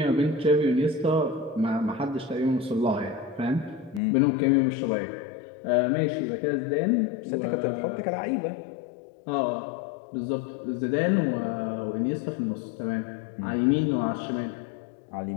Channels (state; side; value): drops out; right; at 4.0 s